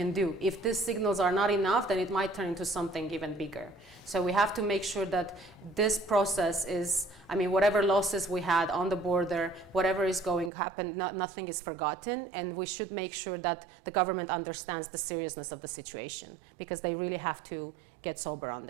do. If these signals are not enough, then it might turn into something even bigger. So we have to make sure that this process is, I mean, whatever losses we had on the border, whatever is going to happen, nothing is forgotten, and we should make sure that the government understands the seriousness of the situation, because they really have to get sober on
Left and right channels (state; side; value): drops out; left; at 10.5 s